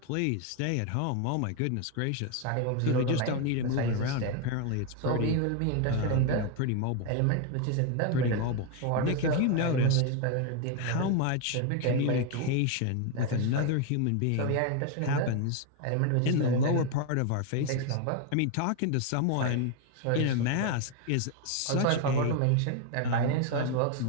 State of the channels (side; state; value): both; different; correlation 0.01